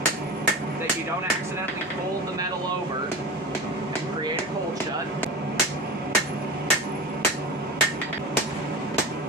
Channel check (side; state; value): both; normal; correlation 0.29